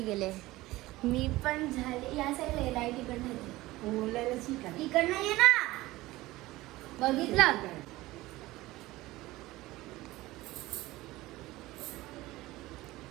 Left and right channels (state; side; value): quieter; left; 18.5 dB